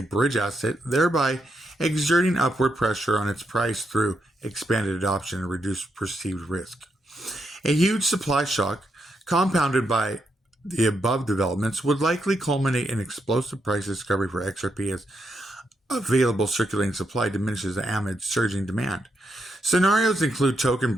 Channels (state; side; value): normal; both; correlation 0.81